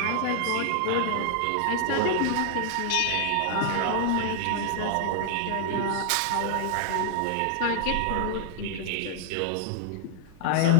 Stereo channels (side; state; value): both; different; correlation 0.00